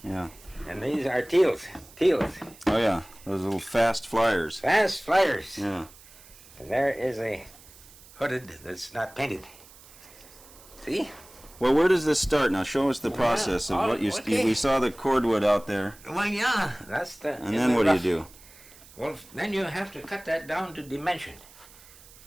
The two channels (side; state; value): right; noise; hiss, 22 dB below the sound